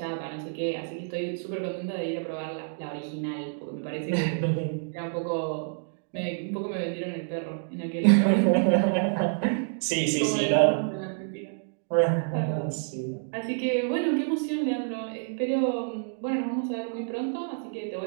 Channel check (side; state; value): left; silent; digital silence